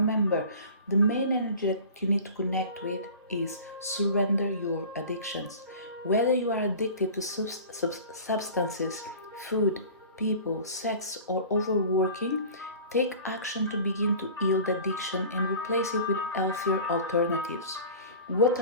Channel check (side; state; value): both; inverted; correlation -0.40